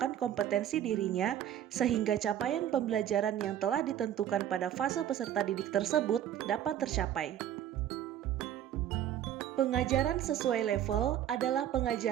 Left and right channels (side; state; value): left; quieter; 10.9 dB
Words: kompetensi dirinya sehingga capaian pembelajaran yang telah ditentukan pada fase peserta didik tersebut dapat tercapai. Pengajaran sesuai level adalah